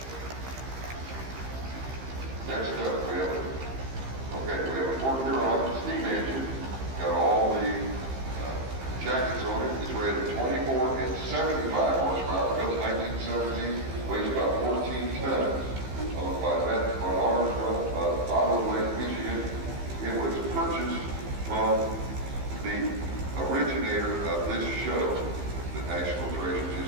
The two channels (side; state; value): left; late; 15 ms